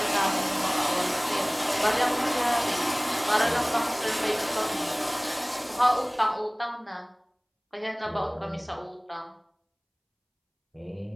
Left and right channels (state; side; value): identical; both; correlation 1.00